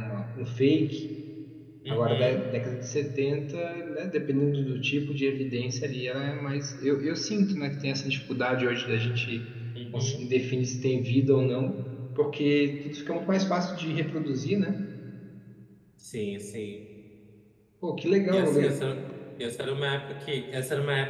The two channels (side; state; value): both; identical; correlation 1.00